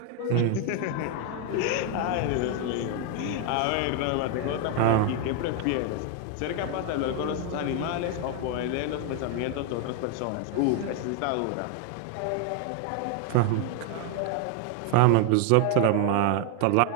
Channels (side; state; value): both; different; correlation 0.00